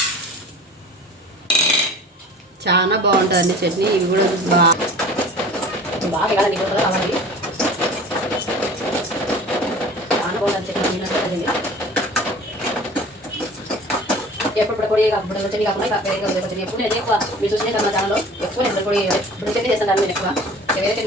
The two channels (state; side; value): normal; both; correlation 0.43